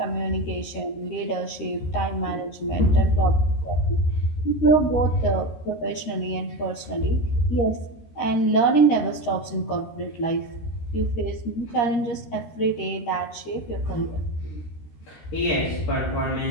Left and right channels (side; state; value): right; late; 13 ms